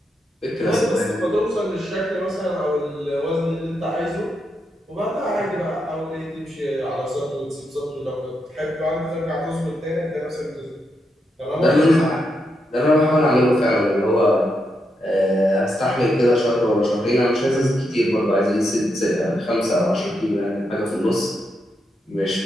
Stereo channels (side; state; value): both; normal; correlation 0.83